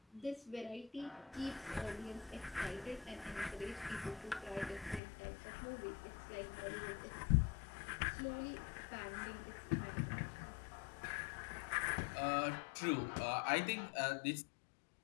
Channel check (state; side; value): drops out; right; at 5.0 s